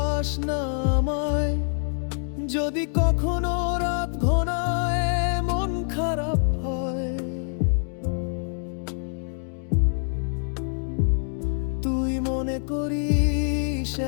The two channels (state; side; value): silent; right; digital silence